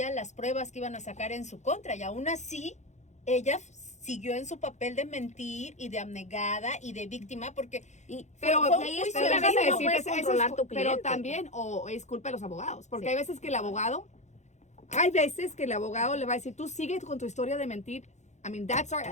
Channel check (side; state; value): right; late; 0.33 ms